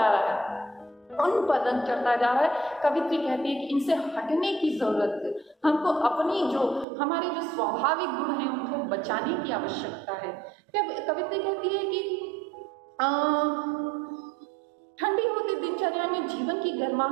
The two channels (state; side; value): drops out; left; at 6.9 s